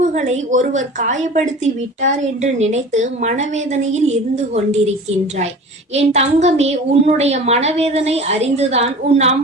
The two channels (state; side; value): normal; both; correlation 0.39